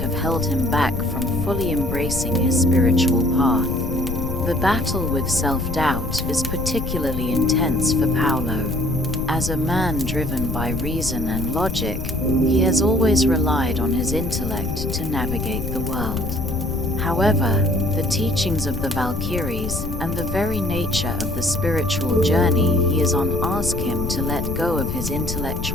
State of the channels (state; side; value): noise; left; rumble, 5 dB below the sound